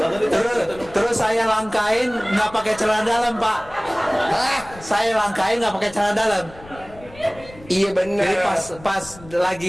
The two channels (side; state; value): left; noise; rumble, 20 dB below the sound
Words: Terus saya langkain nggak pakai celana dalam Pak. Hah? Saya langkain nggak pakai celana dalam. Iya bener. Jadi pas